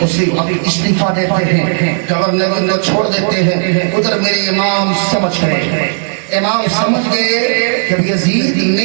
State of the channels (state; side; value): silent; left; digital silence